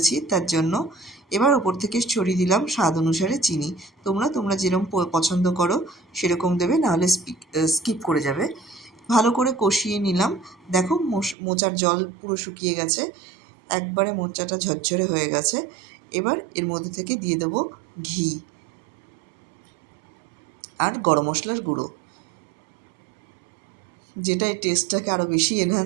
তার জন্য। এবার ওপর থেকে ছড়িয়ে দিলাম স্বাদ অনুসারে চিনি। তোমরা যেরকম পছন্দ করো সেরকম দেবে, নাহলে স্কিপ করে যাবে। ভালো করে কষিয়ে নিলাম। দেখো মোচার জল পুরো শুকিয়ে গেছে, একবারে মোচাটা ঝরঝরে হয়ে গেছে। এবার এর মধ্যে থেকে দিয়ে দেবো ঘি আর গরম মশলার গুঁড়ো, যেটা এই টেস্টটাকে আরও বেশি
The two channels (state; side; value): drops out; left; at 11.4 s